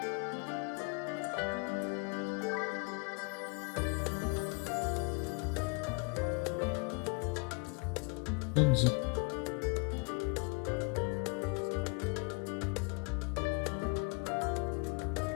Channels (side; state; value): right; quieter; 32.8 dB